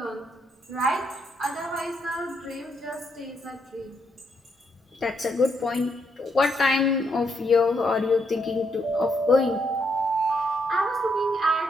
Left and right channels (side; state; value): both; normal; correlation 0.76